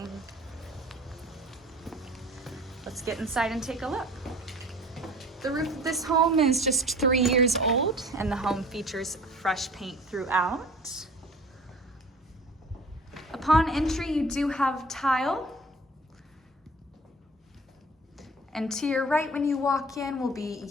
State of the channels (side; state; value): both; normal; correlation 0.45